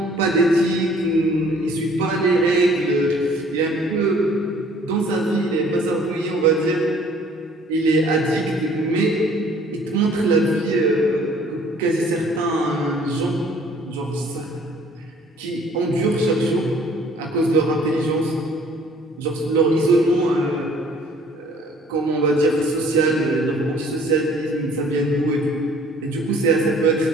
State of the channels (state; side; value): normal; both; correlation 0.56